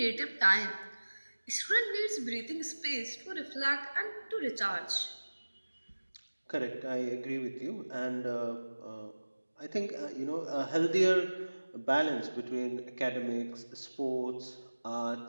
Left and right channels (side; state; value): both; inverted; correlation -1.00